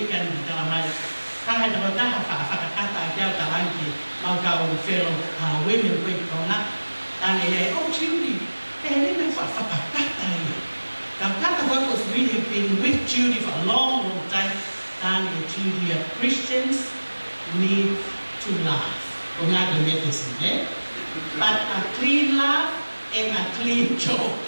ta mai. Kahit ako whakakata kia tarangi, mau kau fellow women with kona, tangi oh Judy, rin ang whakakata ia. Kakata was really been with Judy for a long, long time. Tangi Judy, Christians need to laugh. Kung nga medicine, eh? But a clean laugh and a clean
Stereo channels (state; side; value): inverted; both; correlation -1.00